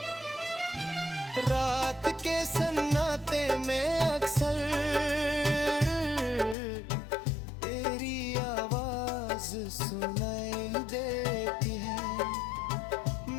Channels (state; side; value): drops out; right; at 6.6 s